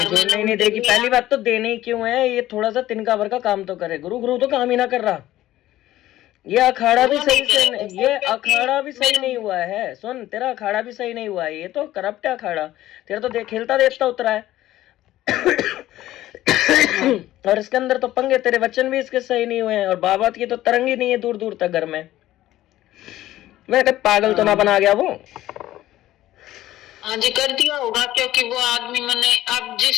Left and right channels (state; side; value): quieter; right; 14.6 dB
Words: जुड़ने ही नहीं देगी। पहली बात तो देने ही क्यों है, ये थोड़ा सा तिनका भर का काम तो करे। गुरु गुरु तो काम ही ना कर रहा। ये अखाड़ा भी सही से ये अखाड़ा भी सही नहीं हुआ है। सुन, तेरा अखाड़ा भी सही नहीं हुआ है, ये तो करप्ट है अखाड़ा। तेरा तो खेलता देखता उतरा है। और इसके अंदर तो पंगे, तेरे वचन भी इसके सही नहीं हुए हैं, और बाबा की तो तरंग ही नहीं है दूर दूर तक घर में। मैं पागल तो ना बना गया वो। हाँ जी, कर दिया होगा, क्योंकि वो आदमी मैंने अब